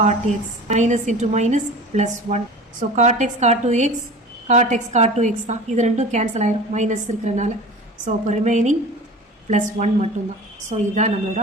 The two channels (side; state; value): both; normal; correlation 0.38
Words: x minus into minus plus 1. So cot x cot 2x cot x cot 2x தான். இது ரெண்டும் கேன்சல் ஆயிரும் மைனஸ் இருக்கிறனால. ஸோ அப்போ ரிமைனிங் +1 மட்டும்தான். ஸோ இதுதான் நம்மளோட